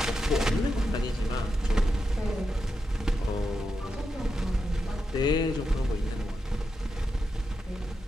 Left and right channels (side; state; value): both; normal; correlation 0.87